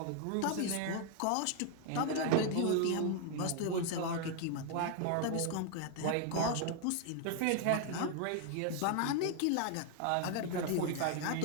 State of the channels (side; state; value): both; different; correlation 0.00